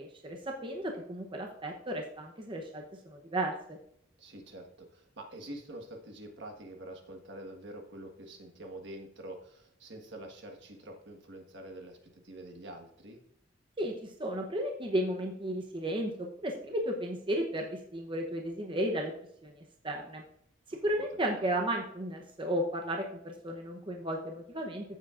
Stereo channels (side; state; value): both; normal; correlation 0.39